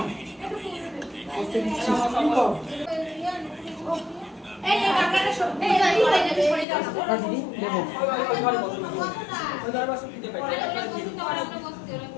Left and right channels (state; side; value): drops out; right; at 6.7 s